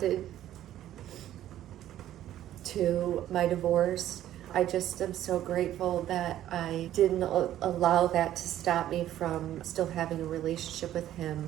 to my divorce. I just am so grateful that I didn't allow that to stop me from still having a relationship with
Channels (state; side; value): quieter; left; 12.5 dB